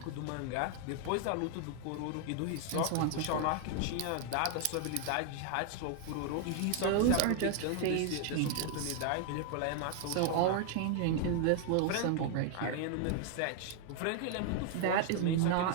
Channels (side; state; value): both; different; correlation 0.00